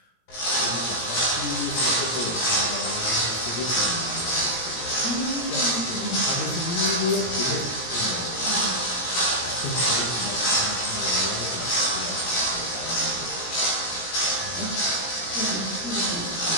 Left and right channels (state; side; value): late; right; 17 ms